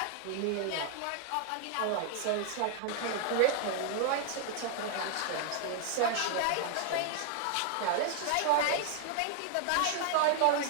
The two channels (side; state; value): both; different; correlation 0.00